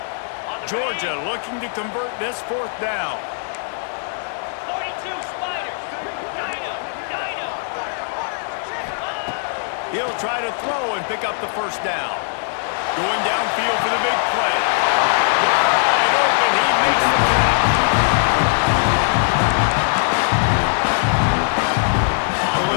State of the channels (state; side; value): silent; right; digital silence